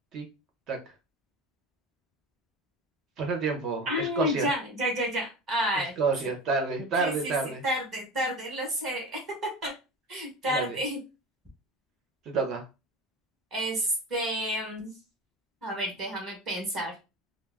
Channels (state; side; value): normal; both; correlation 0.31